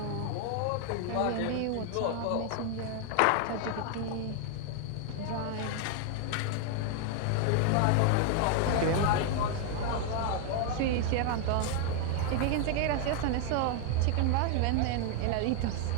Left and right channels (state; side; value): different; both; correlation 0.00